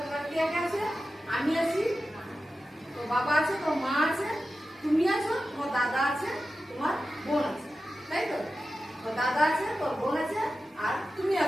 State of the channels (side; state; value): both; normal; correlation 0.93